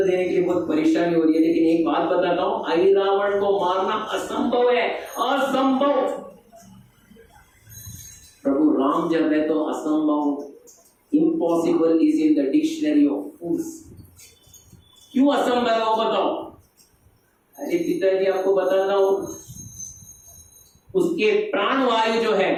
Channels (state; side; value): identical; both; correlation 1.00